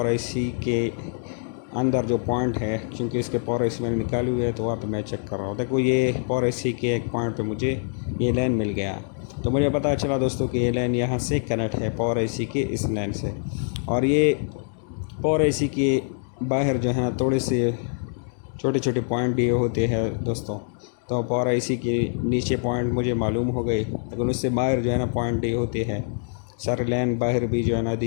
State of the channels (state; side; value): silent; right; digital silence